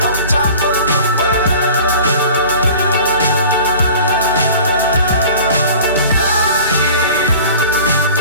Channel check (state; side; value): inverted; both; correlation -0.43